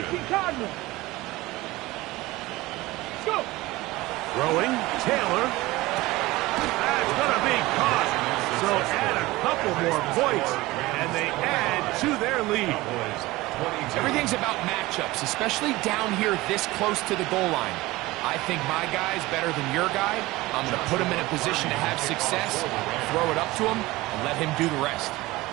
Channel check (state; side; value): quieter; left; 19.6 dB